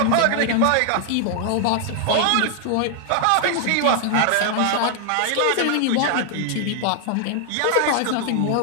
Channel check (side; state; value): both; different; correlation 0.00